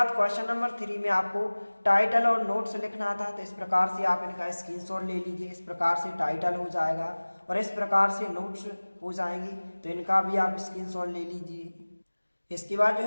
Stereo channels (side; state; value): both; inverted; correlation -1.00